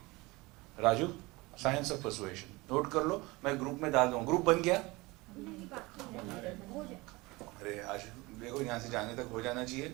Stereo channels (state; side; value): quieter; left; 23.0 dB